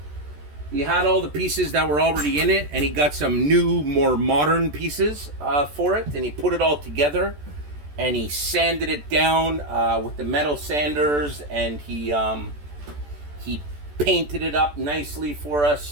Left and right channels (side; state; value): left; late; 14 ms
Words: all the pieces that were already in it, and he got some new, more modern pieces for it, and he put it all together, and he sanded it down with the metal sanders, and he painted it up nicely for us.